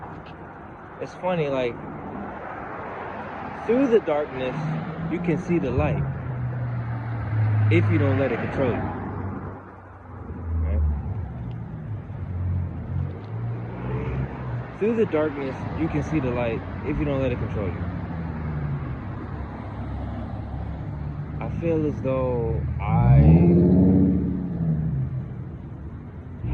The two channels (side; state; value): both; identical; correlation 1.00